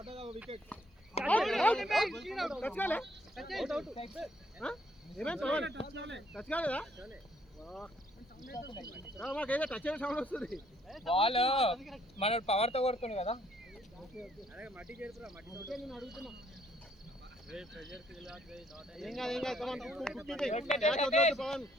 వికెట్ టచ్ కాలే ఏమేం టచ్ కాలేదా మాకేదో టచ్ అయిన సౌండ్ వస్తుంది బాల్ మన పవర్ తో కొడుతుంది కదా మట్టి చేరుకురా మట్టి నేను అడుగుతున్నా ఏం కాదు come on Pavan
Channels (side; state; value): both; normal; correlation 0.67